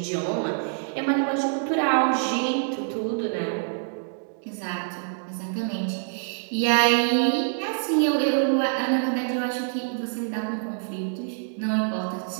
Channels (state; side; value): silent; left; digital silence